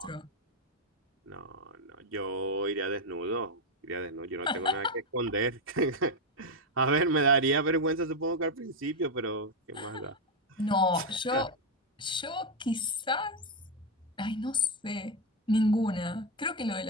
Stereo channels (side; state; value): both; normal; correlation 0.06